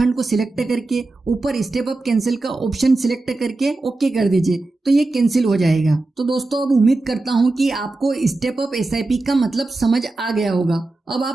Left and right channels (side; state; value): left; quieter; 3.1 dB